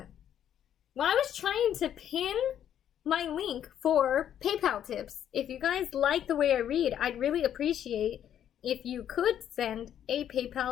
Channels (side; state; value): right; quieter; 10.1 dB